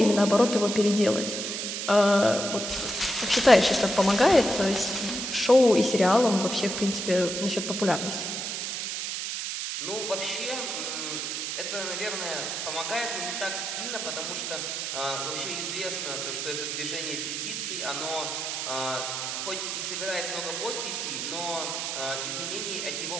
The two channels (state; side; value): noise; right; hiss, 3 dB below the sound